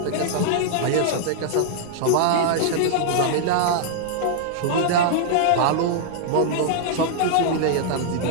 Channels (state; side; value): different; both; correlation -0.01